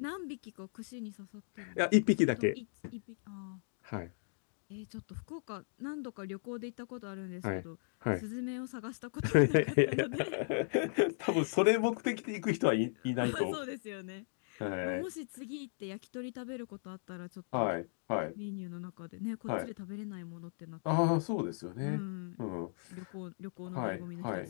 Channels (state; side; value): silent; right; digital silence